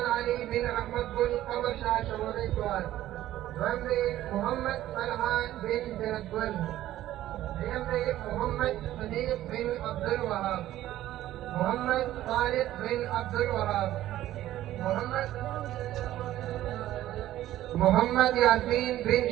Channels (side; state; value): left; quieter; 13.9 dB